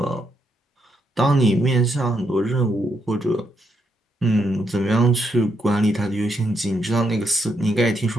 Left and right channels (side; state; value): both; normal; correlation 0.79